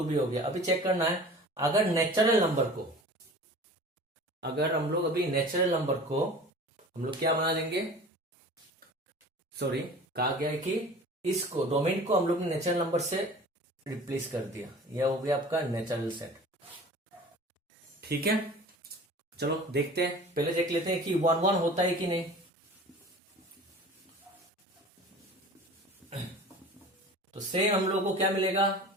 भी हो गया। अभी चेक करना है, अगर नेचुरल नंबर को, अगर हम लोग अभी नेचुरल नंबर को हम लोग क्या बना देंगे, सॉरी कहा गया है कि इसको डोमेन को हम लोग ने नेचुरल नंबर से रिप्लेस कर दिया, यह हो गया आपका नेचुरल सेट। ठीक है, चलो देखते हैं, पहले देख लेते हैं कि 1 1 होता है कि नहीं। तो सेम हम लोग को क्या मिलेगा,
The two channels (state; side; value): normal; both; correlation 0.41